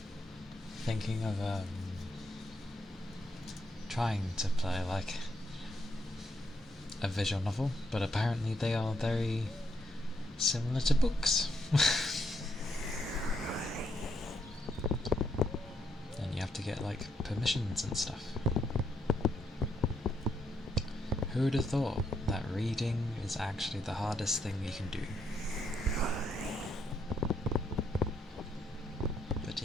thinking of trying to play like a visual novel, but apparently they are very similar to books. And you have to get like permissions and stuff. Who would have thought that reading is actually the hardest thing you can do? But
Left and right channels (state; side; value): normal; both; correlation 0.77